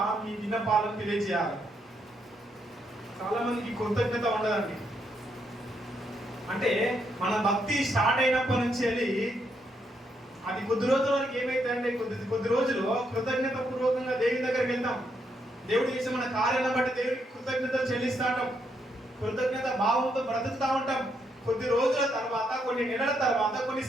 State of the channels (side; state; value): both; normal; correlation 0.77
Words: మీ విన్నపాలను తెలియజేయాలి. చాలా మందికి కృతజ్ఞత ఉండదండి. అంటే మన భక్తి స్టార్ట్ అయినప్పటి నుంచి వెళ్ళి అది కొద్ది రోజుల వరకు ఏమైతే అంటే కొద్ది రోజులు కృతజ్ఞత పూర్వకంగా దేవుని దగ్గరికి వెళ్తాం. దేవుడు చేసే మన కార్యాలను బట్టి దేవుడికి కృతజ్ఞతలు చెల్లిస్తూ ఉంటాం, కృతజ్ఞత భావంతో బ్రతుకుతూ ఉంటాం. కొద్ది రోజుల తర్వాత, కొన్ని నెలల తర్వాత, కొన్ని